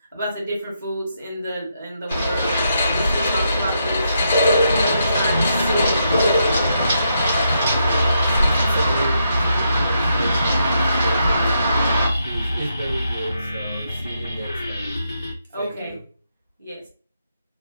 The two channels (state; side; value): inverted; both; correlation -0.79